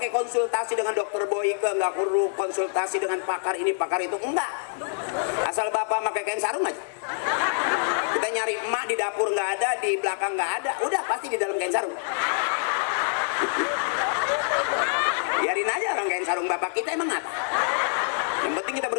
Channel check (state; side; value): silent; right; digital silence